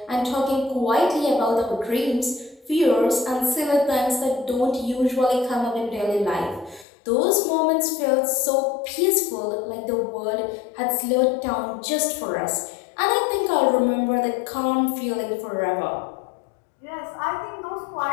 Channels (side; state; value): right; drops out; at 6.9 s